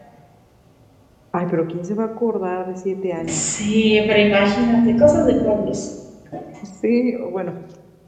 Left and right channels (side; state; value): both; identical; correlation 1.00